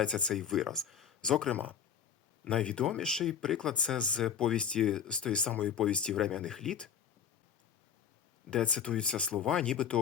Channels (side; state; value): right; quieter; 7.9 dB